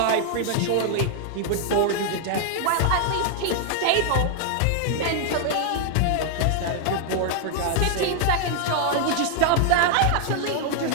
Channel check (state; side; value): different; both; correlation 0.00